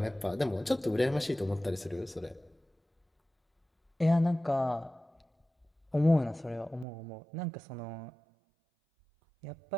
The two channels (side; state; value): left; drops out; at 6.9 s